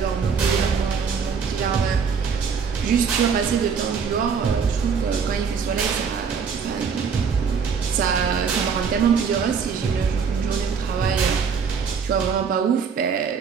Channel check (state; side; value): quieter; left; 6.1 dB